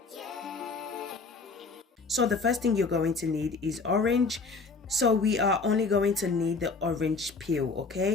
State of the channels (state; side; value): quieter; right; 4.2 dB